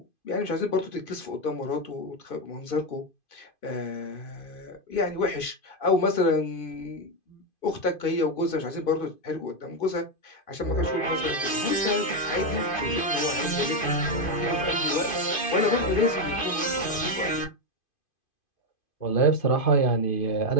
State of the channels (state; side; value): late; right; 2.5 ms